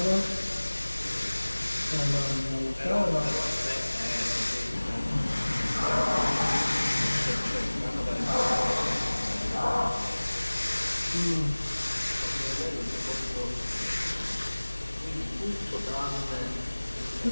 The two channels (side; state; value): both; inverted; correlation -1.00